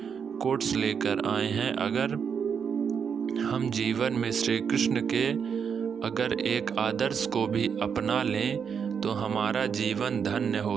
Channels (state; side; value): quieter; left; 6.9 dB